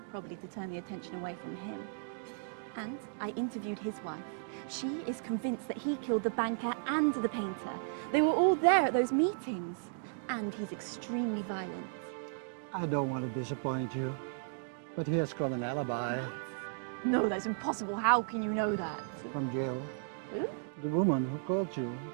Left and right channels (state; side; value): silent; left; digital silence